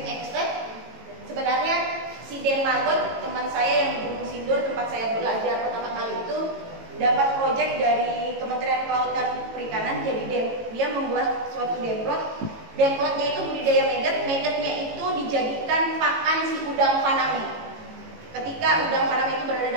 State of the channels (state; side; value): late; left; 18 ms